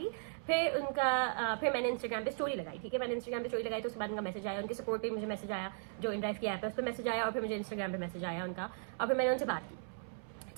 फिर मैंने इंस्टाग्राम पे स्टोरी लगाई, ठीक है। मैंने इंस्टाग्राम पे स्टोरी लगाई तो उसके बाद उनका मैसेज आया, उनके सपोर्ट पे मुझे मैसेज आया, जो इनड्राइव की ऐप है उस पर मैसेज आया, और फिर मुझे इंस्टाग्राम पे मैसेज आया उनका, और फिर मैंने उनसे बात की,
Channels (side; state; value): left; silent; 53 dB below the other